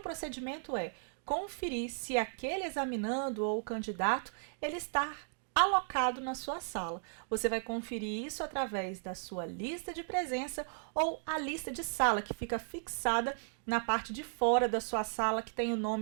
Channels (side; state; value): left; silent; digital silence